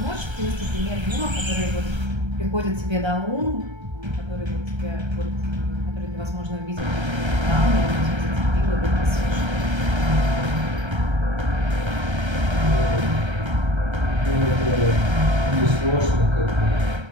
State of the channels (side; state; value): left; late; 1.3 ms